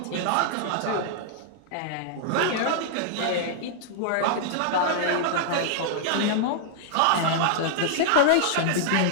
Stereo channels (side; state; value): both; different; correlation -0.01